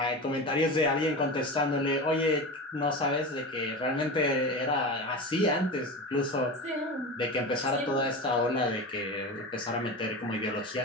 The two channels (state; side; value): normal; both; correlation 0.27